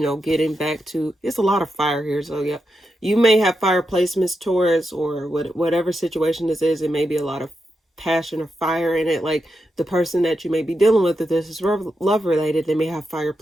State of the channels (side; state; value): both; normal; correlation 0.86